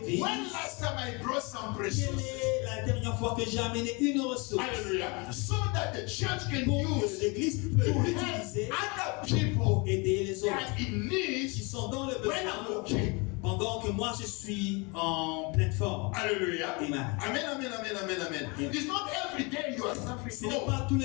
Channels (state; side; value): quieter; right; 29.3 dB